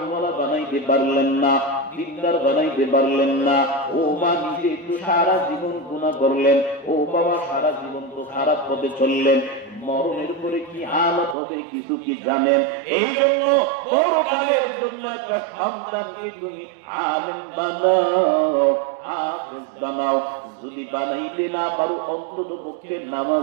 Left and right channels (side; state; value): left; drops out; at 11.4 s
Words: বানাইতে পারলেন না, দিনদার বানাইতে পারলেন না। ও মা নিজে একটু সারা জীবন গুনাহ করলেন, ও বাবা সারা জীবন তো খারাপ পথে চললেন, মরণের পরে কি হালত হবে কিছু কি জানেন? এই জন্য পরকালের জন্য একটা সন্তানকে তুমি আলেম বানাও, হাফেজ বানাও। যদি বানাইতে না পারো অন্তত পক্ষে